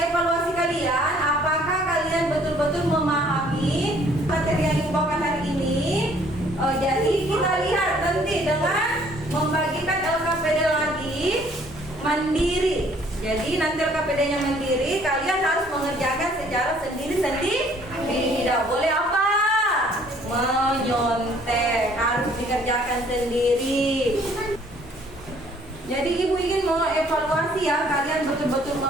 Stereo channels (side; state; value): both; normal; correlation 0.60